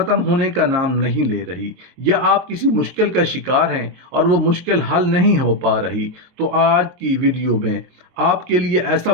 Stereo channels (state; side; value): late; left; 23 ms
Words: होने का नाम नहीं ले रही, या आप किसी मुश्किल का शिकार हैं और वो मुश्किल हल नहीं हो पा रही, तो आज की वीडियो में आपके लिए ऐसा